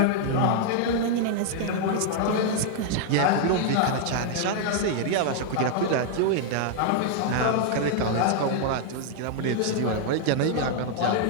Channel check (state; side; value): different; both; correlation -0.01